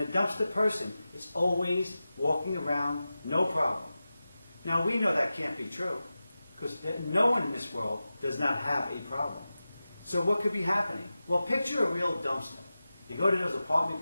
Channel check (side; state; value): both; inverted; correlation -0.94